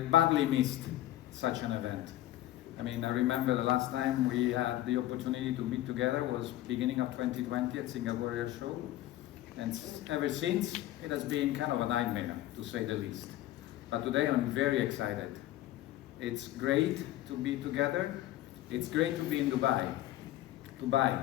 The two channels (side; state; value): right; quieter; 14.6 dB